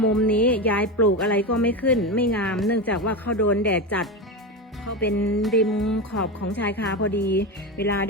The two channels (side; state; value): both; normal; correlation 0.18